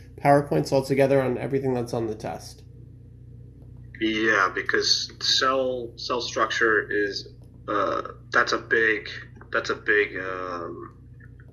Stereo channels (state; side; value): identical; both; correlation 1.00